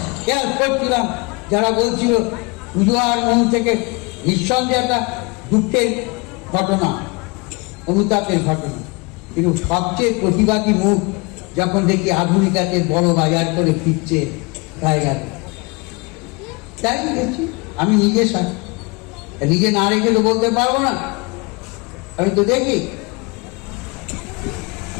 খেয়াল করছিলাম যারা বলছিল পুজো আর মন থেকে নিঃসন্দেহে একটা দুঃখের ঘটনা, অনুতাপের ঘটনা, কিন্তু সবচেয়ে প্রতিবাদী মুখ যখন দেখি আধুনিকাতে বড় বাজার করে ফিরছে গায়ে গেল। তাই গেছি আমি নিজে না রেখে তো বলতে পারবো না। আমি তো দেখি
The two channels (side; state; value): right; quieter; 28.4 dB